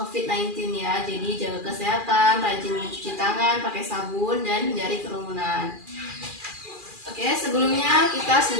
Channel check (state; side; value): late; left; 2.4 ms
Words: ya. Jadi jaga kesehatan, rajin mencuci tangan, pakai sabun, dan hindari kerumunan. Oke, sebelumnya kita